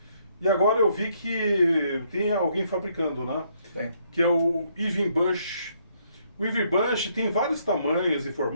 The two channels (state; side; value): inverted; both; correlation -0.70